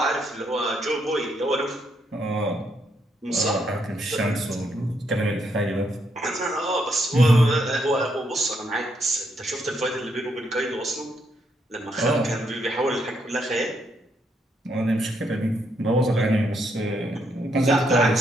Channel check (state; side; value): normal; both; correlation 0.76